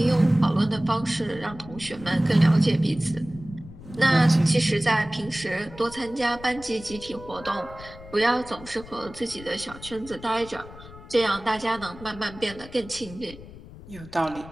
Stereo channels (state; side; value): noise; left; rumble, 17 dB below the sound